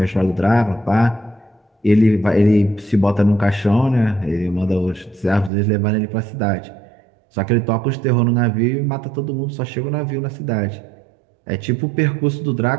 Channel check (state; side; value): drops out; left; at 5.5 s